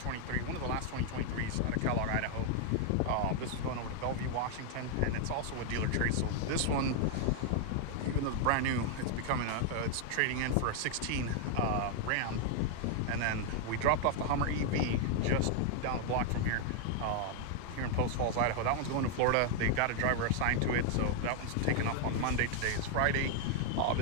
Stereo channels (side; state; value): both; different; correlation 0.00